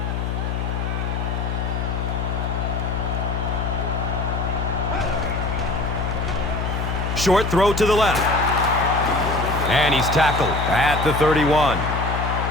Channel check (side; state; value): left; noise; hum, 2 dB below the sound